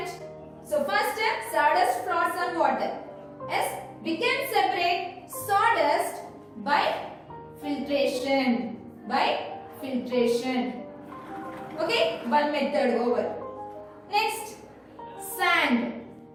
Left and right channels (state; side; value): identical; both; correlation 1.00